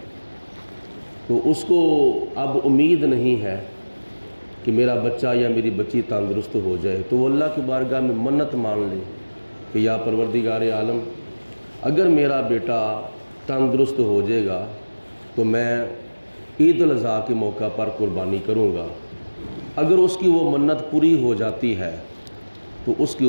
तो उसको अब उम्मीद नहीं है कि मेरा बच्चा या मेरी बच्ची तंदुरुस्त हो जाए, तो वो अल्लाह की बारगाह में मन्नत मान ले कि या परवरदिगार आलम, अगर मेरा बेटा तंदुरुस्त हो जाएगा तो मैं ईद उल अज़हा के मौका पर कुर्बानी करूँगा। अगर उसकी वो मन्नत पूरी हो जाती है तो उसके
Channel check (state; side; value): inverted; both; correlation -1.00